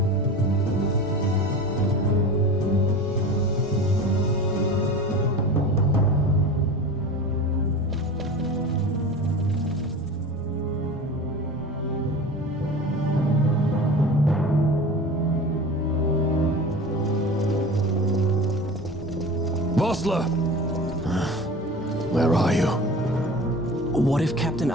Where are you? What if Captain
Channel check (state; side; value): normal; both; correlation 0.34